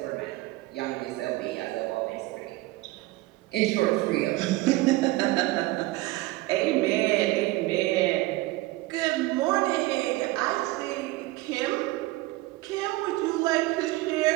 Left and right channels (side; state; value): left; quieter; 19.4 dB